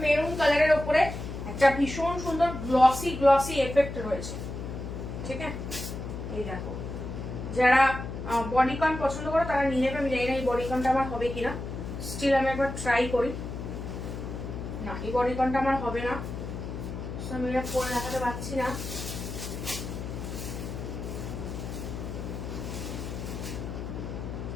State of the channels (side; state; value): left; noise; hum, 7 dB below the sound